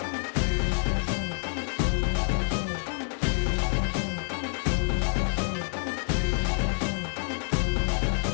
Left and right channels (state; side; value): silent; right; 60 dB below the other